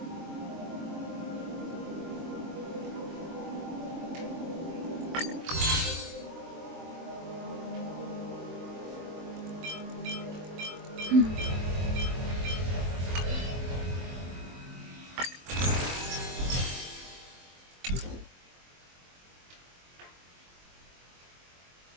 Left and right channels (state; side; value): late; left; 23 ms